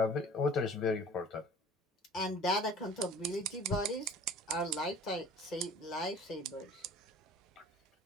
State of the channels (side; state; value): both; normal; correlation 0.47